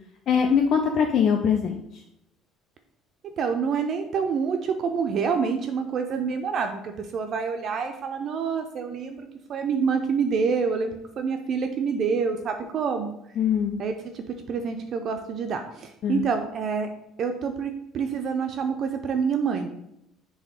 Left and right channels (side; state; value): both; normal; correlation 0.56